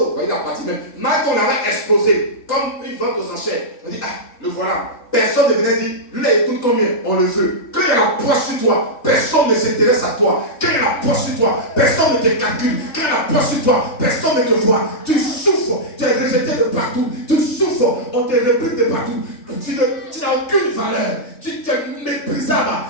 il a parti même. Marie qu'on avait exposé comme une vente aux enchères. On dit, ah, le voilà. Personne ne venait dire, lui là, écoute combien, on le veut. Quand il y a la poisse sur toi, personne ne s'intéresse à toi. Quand il y a la poisse sur toi, personne ne te calcule. Quand il y a la poisse sur toi, personne ne te voit. Tu souffres, tu es rejeté de partout. Tu souffres, on te réplique de partout. Tu n'as aucune valeur. Tu es méprisable.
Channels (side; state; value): right; late; 3.5 ms